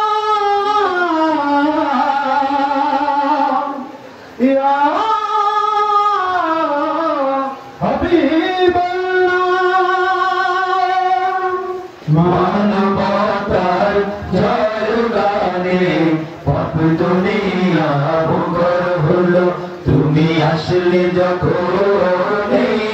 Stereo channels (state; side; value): identical; both; correlation 1.00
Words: ইয়া হাবিবাল্লাহ। মানবতার জয়গানে পাপ দুনিয়া মুখর হলো। তুমি আসলে যখন এই